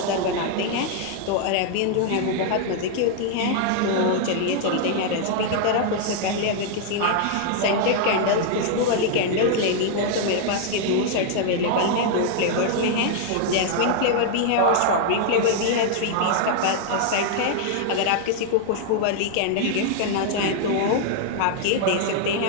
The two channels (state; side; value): different; both; correlation 0.00